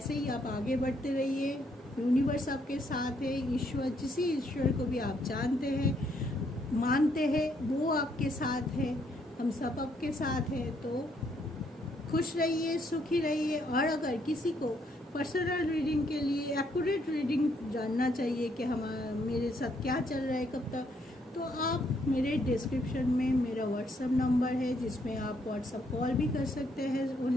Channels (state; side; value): normal; both; correlation 0.71